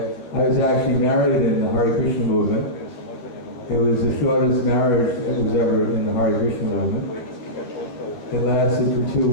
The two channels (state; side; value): late; right; 12 ms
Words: I was actually married in the Hare Krishna movement. It was the shortest marriage that was ever in the Hare Krishna movement. It lasted for 2